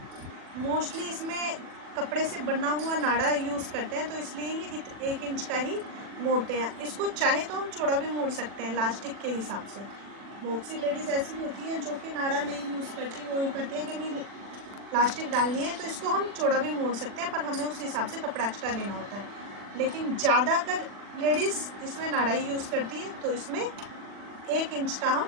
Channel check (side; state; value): left; late; 40 ms